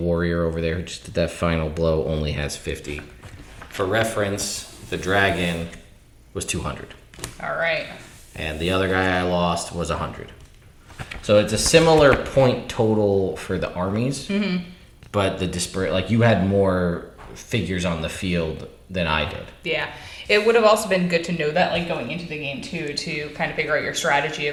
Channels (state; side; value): identical; both; correlation 1.00